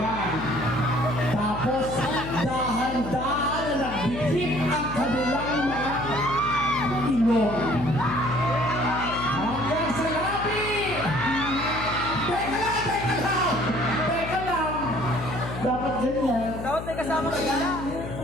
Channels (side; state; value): left; noise; hum, 9 dB below the sound